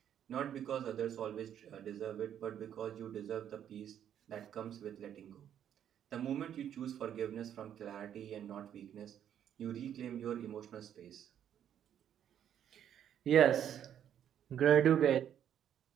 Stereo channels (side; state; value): left; quieter; 9.8 dB